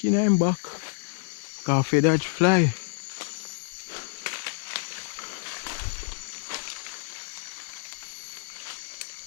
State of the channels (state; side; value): silent; right; digital silence